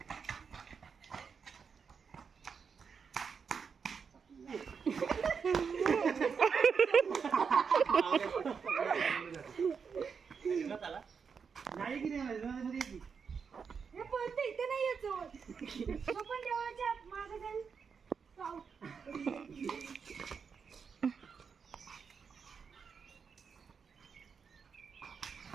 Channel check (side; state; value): left; quieter; 6.1 dB